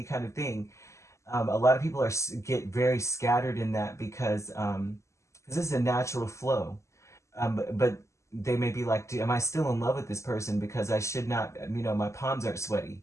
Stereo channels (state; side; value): late; right; 0.14 ms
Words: kind of thing. A lot of people get very scattered in that because this is a natural flow. But they may be like, am I still in love with this person? Because I should not, my palms aren't sweaty.